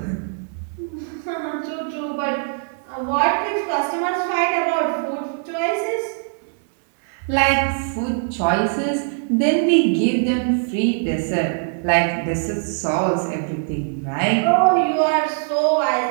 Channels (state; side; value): silent; left; 64 dB below the other